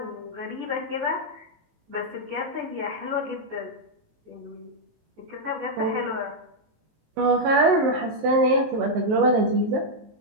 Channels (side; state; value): left; late; 19 ms